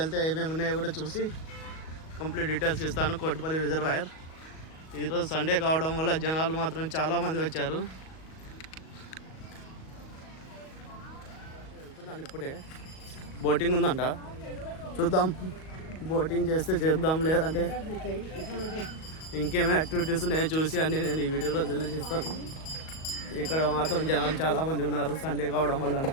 ఏమేమి ఉన్నాయో కూడా చూసి కంప్లీట్ డీటెయిల్స్ ఇస్తాను. కోటిపల్లి రిజర్వాయర్ ఈరోజు సండే కావడం వల్ల జనాలు మాత్రం చాలామంది వచ్చారు. వెళ్తున్నాను ఇప్పుడే. బోటింగ్ ఉందంట, చూద్దాం. బోటింగ్ చేస్తే చేద్దాం, లేదంటే ఇంకేమైనా యాక్టివిటీస్ ఉన్నాయో చూసి అన్నీ నేను ఈ వీడియోలో తెలియజేస్తాను. ఇక్కడ మాత్రం జనాలు చాలామంది ఉన్నారు, సండే కావడం వల్ల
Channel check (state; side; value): late; right; 38 ms